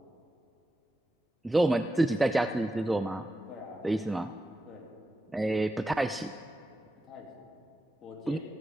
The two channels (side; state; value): both; normal; correlation 0.90